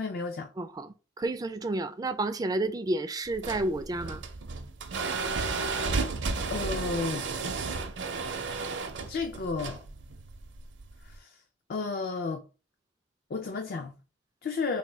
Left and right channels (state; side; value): normal; both; correlation 0.38